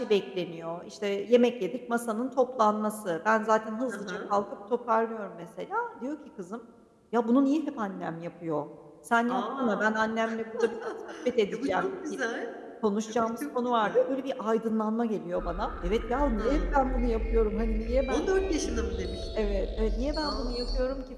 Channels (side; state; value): both; identical; correlation 1.00